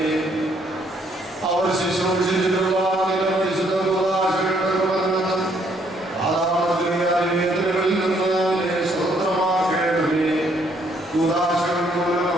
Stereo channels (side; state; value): both; normal; correlation 0.68